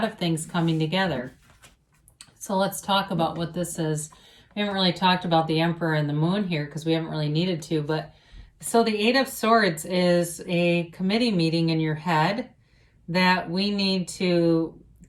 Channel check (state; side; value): identical; both; correlation 1.00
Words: of things coming together. So let's talk about what this is. We haven't really talked about the Emperor and the Moon here because we haven't really needed to. But so the Eight of Swords is a committee meeting in your head that we need to